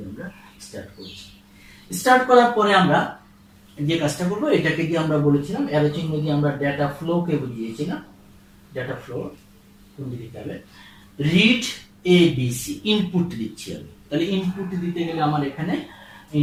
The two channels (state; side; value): identical; both; correlation 1.00